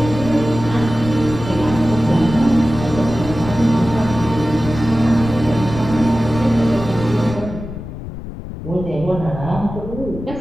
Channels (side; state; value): left; noise; rumble, 10 dB below the sound